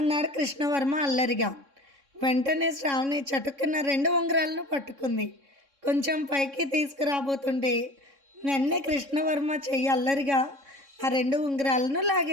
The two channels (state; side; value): late; left; 3.6 ms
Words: కృష్ణవర్మ అల్లరిగా. వెంటనే శ్రావణి చటుక్కున్న 2 ఉంగరాలను పట్టుకుంది. కొంచెం పైకి తీసుకురాబోతుంటే వెన్నే కృష్ణవర్మ చెయ్యి అల్లరిగా ఆ 2 ఉంగరాలను